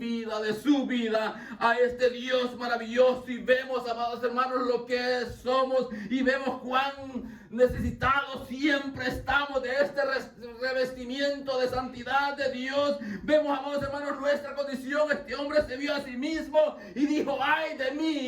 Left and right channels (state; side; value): identical; both; correlation 1.00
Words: de su vida, a este Dios maravilloso, y vemos, amados hermanos, lo que somos, y vemos cuán necesitados siempre estamos de este revestimiento de santidad de Dios. Vemos, amados hermanos, nuestra condición. Este hombre se vio a sí mismo y dijo: ay de